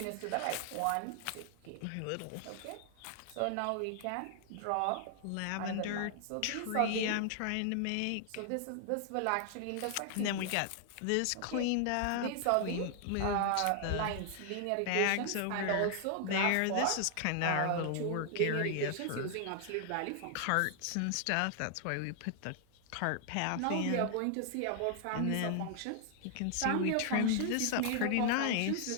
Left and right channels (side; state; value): both; different; correlation 0.00